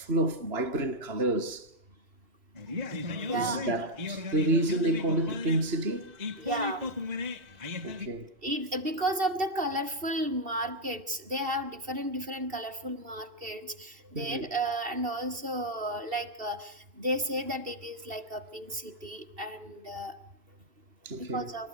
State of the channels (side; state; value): left; late; 2.7 ms